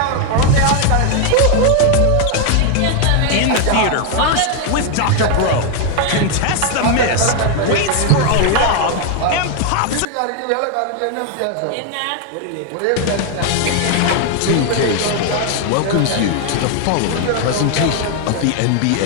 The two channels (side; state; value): both; different; correlation 0.01